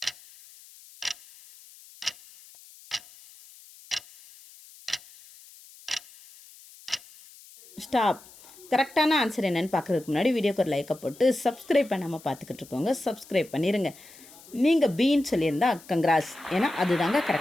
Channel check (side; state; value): left; noise; hiss, 22 dB below the sound